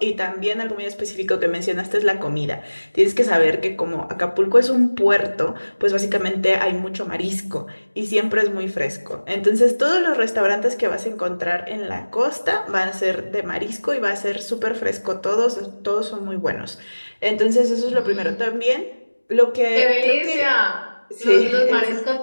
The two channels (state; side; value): inverted; both; correlation -1.00